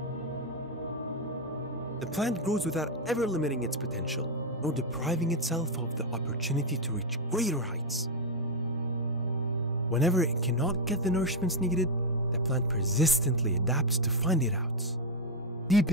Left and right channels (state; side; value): normal; both; correlation 0.01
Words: The plant grows without ever limiting its potential, nor depriving itself of the opportunity to reach greater heights. Whenever it cannot get the nourishments needed, the plant persistently adapts to find it out,